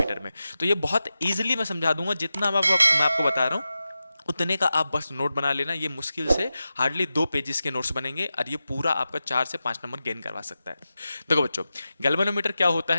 में। तो ये बहुत ईजिली मैं समझा दूंगा, जितना मैं आपको बता रहा हूँ उतने का आप बस नोट बना लेना। ये मुश्किल से हार्डली 2 पेजेस के नोट्स बनेंगे और ये पूरा आपका 4 से 5 नंबर गेन करवा सकता है। देखो बच्चों, गैल्वेनोमीटर क्या होता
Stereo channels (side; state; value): both; inverted; correlation -0.93